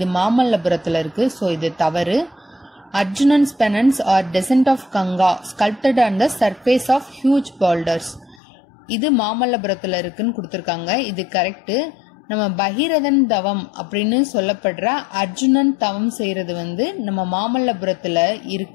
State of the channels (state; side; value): drops out; right; at 8.4 s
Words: மாமல்லபுரத்துல இருக்கு. சோ இது தவறு. Arjunan's penance or descent of Ganga sculpted on the surface of huge boulders. இது மாமல்லபுரத்துல இருக்குன்னு கொடுத்திருக்காங்க. இது கரெக்ட். நம்ம பகீரதன் தவம் அப்படின்னு சொல்லப்படுற அர்ஜுனன் தவம் செய்யறது நம்ம மாமல்லபுரத்துல